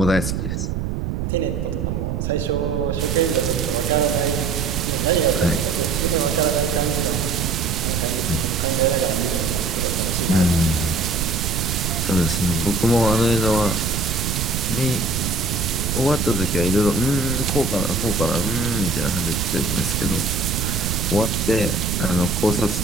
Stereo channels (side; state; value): right; noise; rumble, 2 dB below the sound